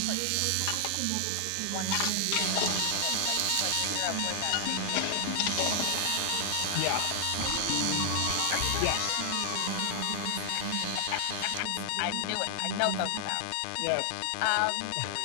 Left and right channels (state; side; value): different; both; correlation 0.00